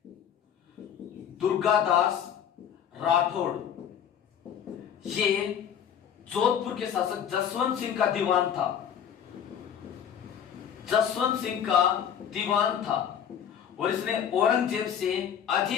दुर्गादास राठौड़ ये जोधपुर के शासक जसवंत सिंह का दीवान था। जसवंत सिंह का दीवान था और इसने औरंगजेब से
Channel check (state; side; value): quieter; right; 8.8 dB